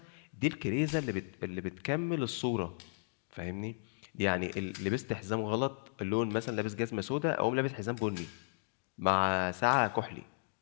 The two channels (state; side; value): silent; right; digital silence